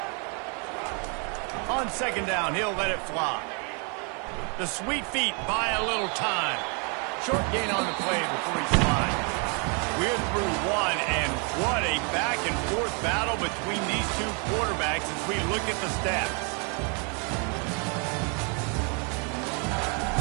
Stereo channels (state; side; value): quieter; left; 36.1 dB